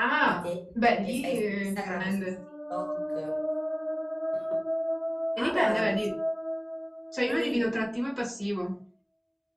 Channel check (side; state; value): both; identical; correlation 1.00